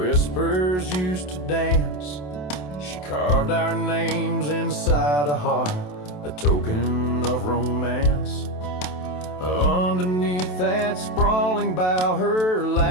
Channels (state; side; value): late; right; 27 ms